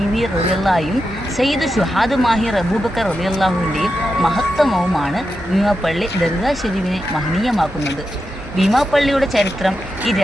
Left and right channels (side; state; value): both; normal; correlation 0.88